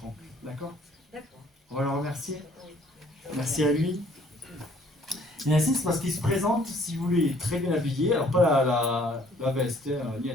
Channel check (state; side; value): normal; both; correlation 0.59